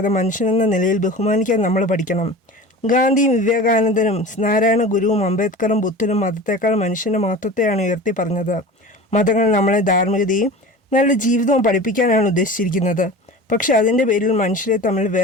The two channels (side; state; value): both; normal; correlation 0.36